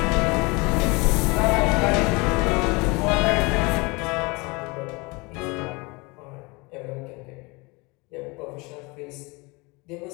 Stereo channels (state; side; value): quieter; right; 26.5 dB